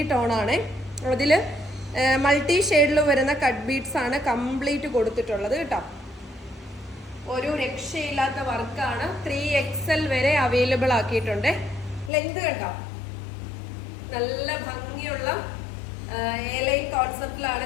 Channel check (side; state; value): right; drops out; at 12.1 s